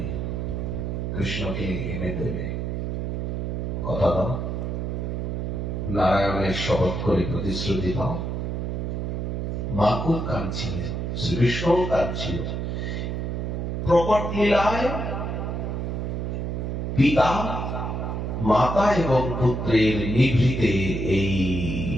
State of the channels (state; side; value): noise; right; hum, 2 dB below the sound